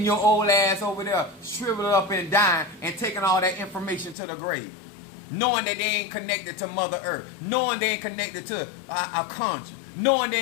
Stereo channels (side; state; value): right; drops out; at 4.2 s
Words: your old ass over there, shriveled up and dying, and taking all that information to the grave. Knowing that they ain't connected to Mother Earth. Knowing they ain't connected to a conjure. Knowing